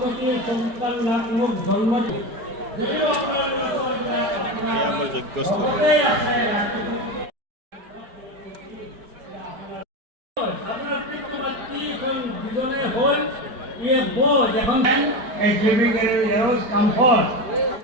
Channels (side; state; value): left; late; 4.3 ms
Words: করতে সন্তান নামক জন্ম দিয়ে আমার যজ্ঞস্থল আপনার পিতৃমাতৃ কোন দুজনে হন ये वो যখন a giving arrows comfort